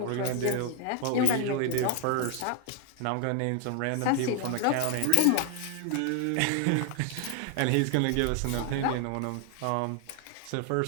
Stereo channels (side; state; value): both; different; correlation 0.00